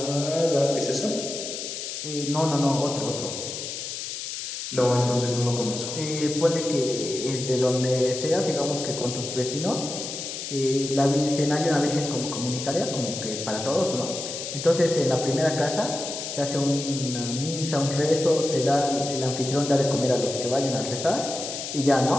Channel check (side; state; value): left; noise; hiss, 6 dB below the sound